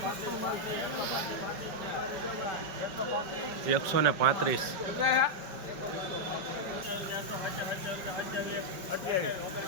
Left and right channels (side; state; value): left; late; 5.4 ms